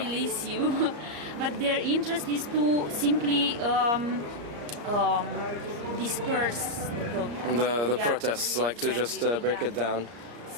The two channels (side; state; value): left; late; 34 ms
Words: Release you. But their interest is to simply disperse the protests, like to just break it down.